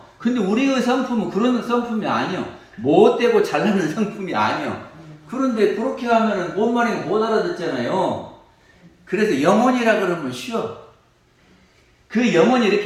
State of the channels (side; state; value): both; identical; correlation 1.00